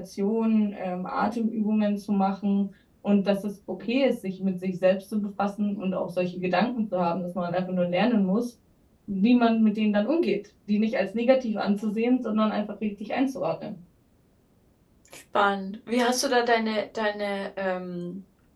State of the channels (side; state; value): both; identical; correlation 1.00